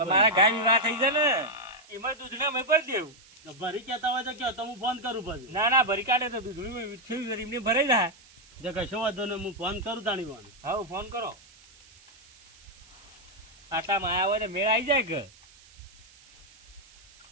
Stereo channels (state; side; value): noise; right; hiss, 25 dB below the sound